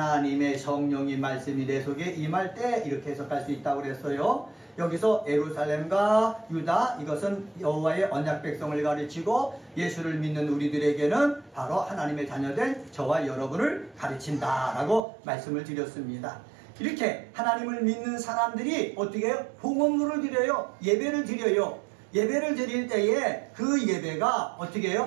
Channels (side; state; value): left; drops out; at 15.0 s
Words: 성령이 말씀이 내 속에 임할 때, 이렇게 해석할 수 있다고 그랬어요. 여기서 예루살렘과 유다, 이것은 여호와의 언약 백성을 가르치고 예수를 믿는 우리들에게는 바로 하나님의 자녀된 저와 여러분을 가르친다라고 말씀을 드렸습니다. 이렇게 하나님을 믿는 사람들이 어떻게 해요? 봉헌물을 드려요. 예배를 드려요. 예배를 드릴 때에 그 예배가 어떻게